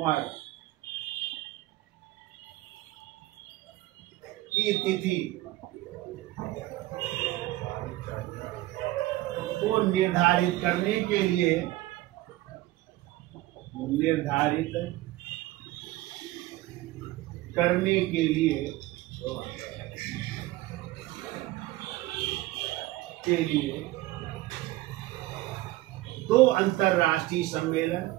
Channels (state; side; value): quieter; left; 17.3 dB